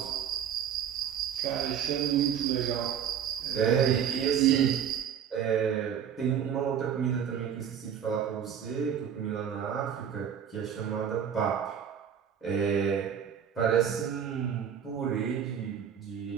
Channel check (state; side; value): quieter; left; 8.5 dB